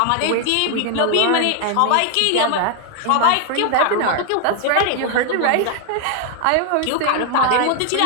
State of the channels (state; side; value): different; both; correlation 0.00